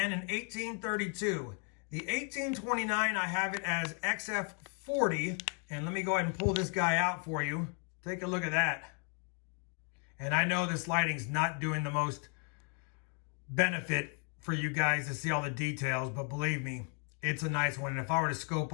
an 1832. The 1829, I have it as XF40, and let me go ahead and pull this guy out for you. Take a look at that. And I know this lighting's not doing the most benefit for you guys to see all the details, but believe me, it's a nice one. And if I were to scope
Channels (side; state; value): right; quieter; 39.0 dB